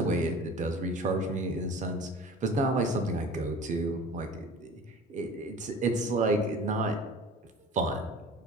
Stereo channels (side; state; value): both; normal; correlation 0.41